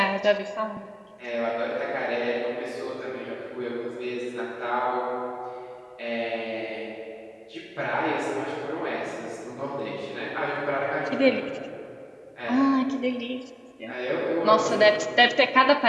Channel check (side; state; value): both; identical; correlation 1.00